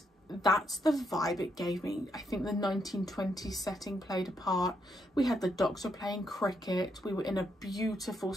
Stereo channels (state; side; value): normal; both; correlation 0.77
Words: that's the vibe it gave me. I think the 1920s setting played a part. We had the Doctor playing cricket, we were in a beautiful